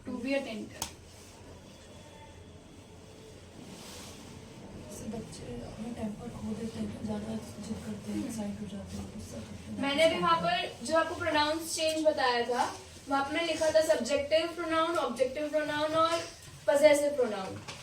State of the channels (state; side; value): identical; both; correlation 1.00